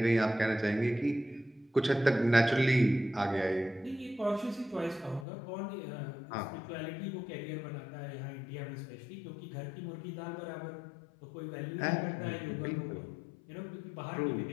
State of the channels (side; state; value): right; drops out; at 5.2 s